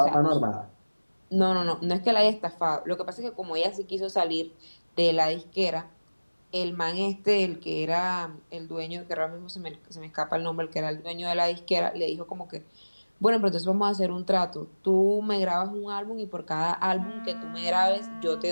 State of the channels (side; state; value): both; inverted; correlation -1.00